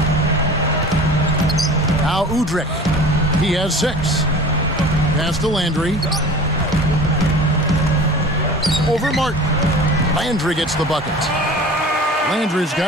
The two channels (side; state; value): both; normal; correlation 0.41